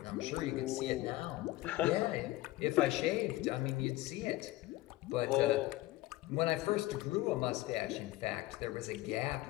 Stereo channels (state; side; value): quieter; right; 17.6 dB